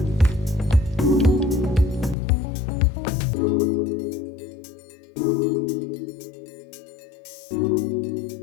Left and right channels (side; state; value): right; drops out; at 2.1 s